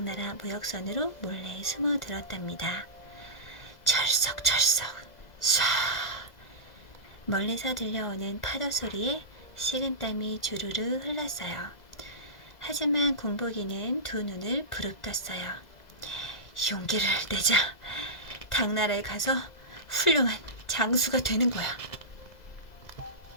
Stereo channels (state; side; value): late; right; 2.0 ms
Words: 무역선으로 몰래 숨어들었답니다. 철썩철썩 쏴. 멀리서 들려오는 파도 소리에 식은땀이 주르르 흘렀어요. 하지만 군복이는 두 눈을 부릅떴어요. 용기를 내자. 당나라에 가서 훌륭한 장수가 되는 거야.